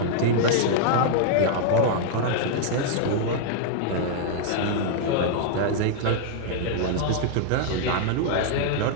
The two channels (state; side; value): different; both; correlation -0.01